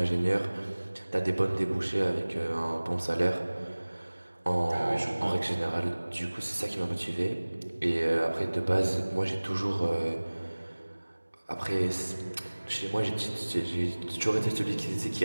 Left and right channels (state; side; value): inverted; both; correlation -1.00